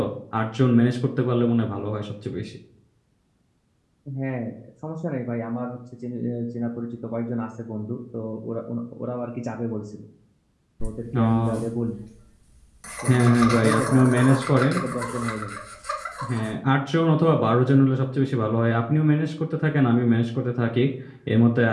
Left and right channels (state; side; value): identical; both; correlation 1.00